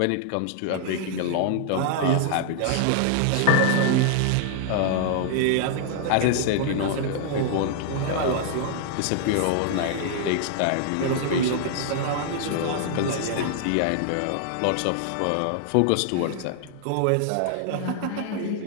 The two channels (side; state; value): both; different; correlation 0.00